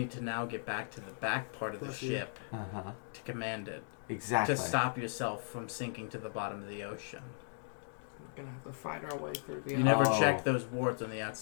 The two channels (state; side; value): silent; right; digital silence